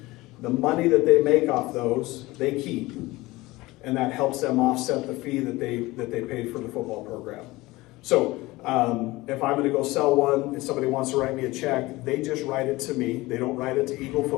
The money that they make off those, they keep. And that helps them offset the fee that they paid for the football program. So if I'm going to go sell one, if somebody wants to write me a check, they just write it to me. They don't write it to Eagle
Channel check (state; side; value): quieter; right; 20.2 dB